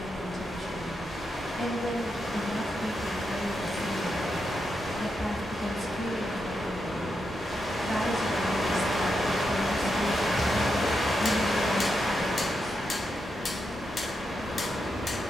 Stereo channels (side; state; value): both; normal; correlation 0.84